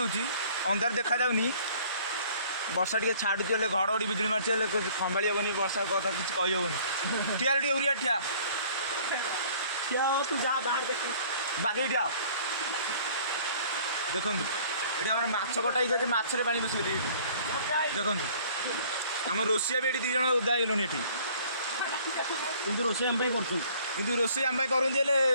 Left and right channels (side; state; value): both; inverted; correlation -0.54